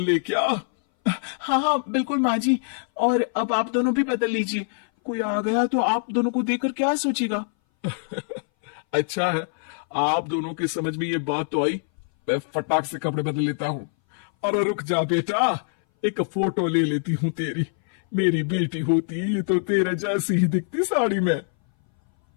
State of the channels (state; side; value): silent; right; 60 dB below the other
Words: क्या? हाँ हाँ बिल्कुल माँ जी। और अब आप दोनों भी बदल लीजिए, कोई आ गया तो आप दोनों को देखकर क्या सोचेगा। अच्छा है, आप दोनों के समझ में ये बात तो आई। मैं फटाक से कपड़े बदल लेता हूँ। अरे रुक जा बेटा, एक फोटो ले लेती हूँ तेरी। मेरी बेटी होती तो तेरे जैसी ही दिखती साड़ी में।